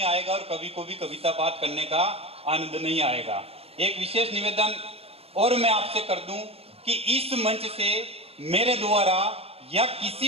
आएगा और कवि को भी कविता पाठ करने का आनंद नहीं आएगा। एक विशेष निवेदन और मैं आपसे कर दूं कि इस मंच से मेरे द्वारा या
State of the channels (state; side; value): late; left; 0.29 ms